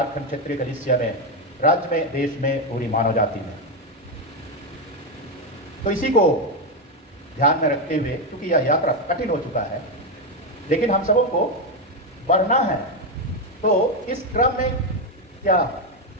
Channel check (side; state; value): both; normal; correlation 0.08